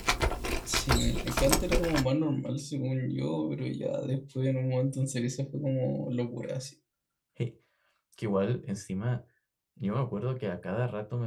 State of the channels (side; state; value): both; identical; correlation 1.00